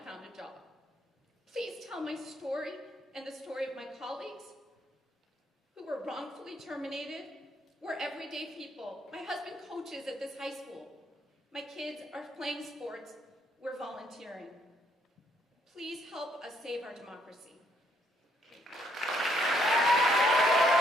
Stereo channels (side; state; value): both; normal; correlation 0.70